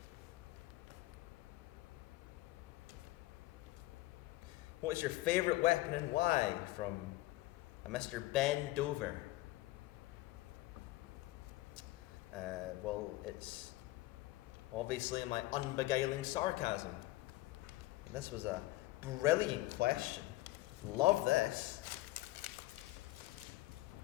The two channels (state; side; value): quieter; right; 18.2 dB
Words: What is your favourite weapon and why? From a Mr. Ben Dover. Well, it's obviously my unbeguiling sarcasm. And this was a brilliant question. Love this.